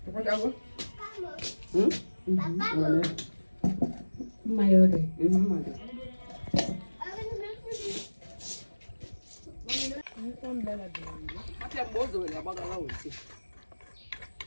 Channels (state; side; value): inverted; both; correlation -1.00